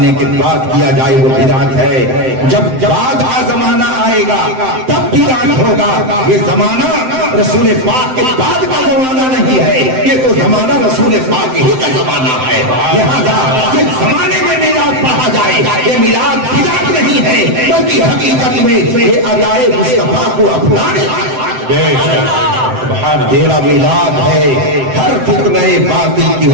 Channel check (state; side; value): late; left; 7.8 ms